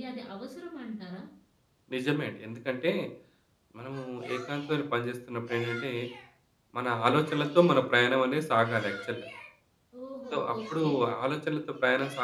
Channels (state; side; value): identical; both; correlation 1.00